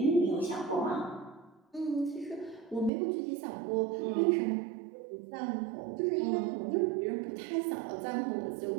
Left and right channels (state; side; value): drops out; left; at 2.9 s